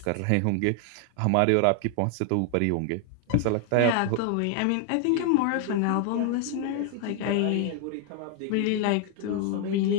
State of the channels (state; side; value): different; both; correlation 0.00